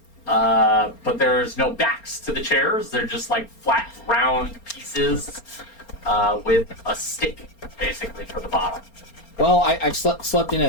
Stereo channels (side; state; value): right; late; 4.3 ms